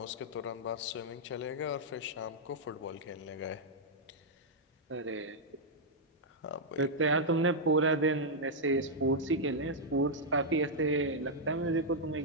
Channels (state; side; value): normal; both; correlation -0.06